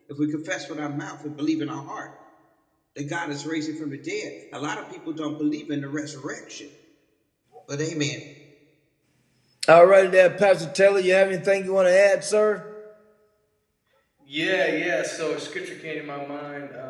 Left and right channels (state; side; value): identical; both; correlation 1.00